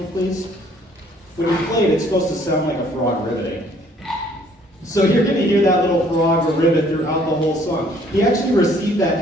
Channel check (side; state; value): both; normal; correlation 0.60